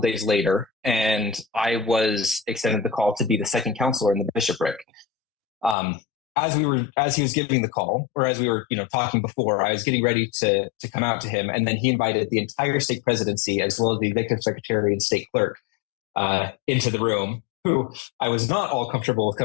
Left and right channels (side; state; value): right; drops out; at 5.8 s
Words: later, and I was extended the call to be the second counselor in the bishopric. As he was giving the call, or as we were, talking before, I was getting ready to come out to him, and then he invited the entire stake presidency as well as the executive secretary and stake clerk into the room, who I was not all comfortable with